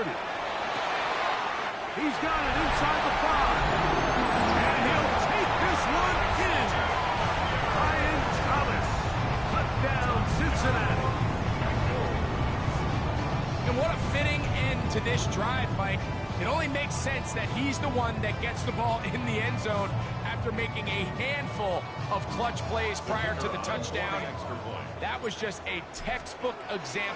He's got it inside the 5. And he'll take this one in. Ryan Thomas. Touchdown, Cincinnati. And what a fitting end to this drive, Mike. It only makes sense that he's the one that gets the ball in the end zone after making a handful of clutch plays prior to the touchdown. That was just a textbook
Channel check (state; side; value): identical; both; correlation 1.00